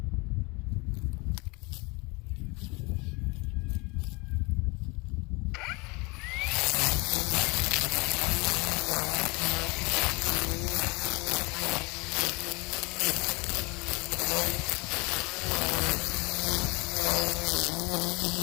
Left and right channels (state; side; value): quieter; right; 27.0 dB